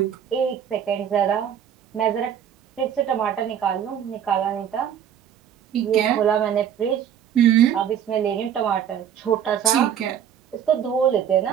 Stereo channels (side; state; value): left; quieter; 9.0 dB